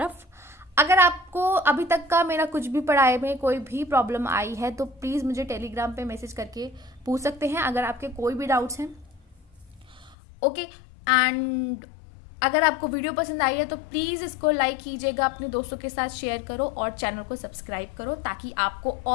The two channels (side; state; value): right; drops out; at 10.2 s